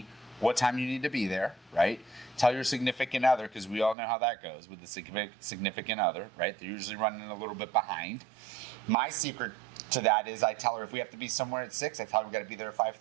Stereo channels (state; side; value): drops out; left; at 4.0 s